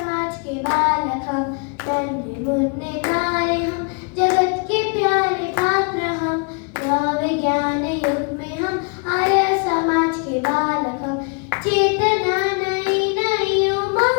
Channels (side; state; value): right; quieter; 37.0 dB